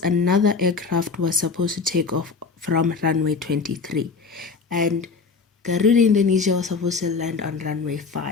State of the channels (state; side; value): quieter; right; 4.8 dB